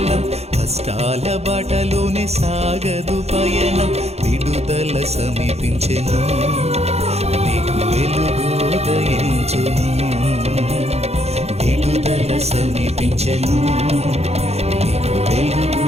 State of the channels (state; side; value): late; left; 0.31 ms